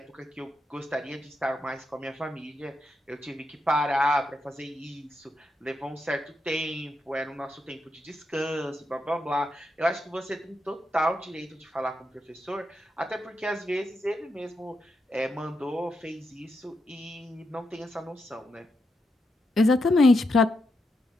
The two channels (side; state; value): both; normal; correlation 0.84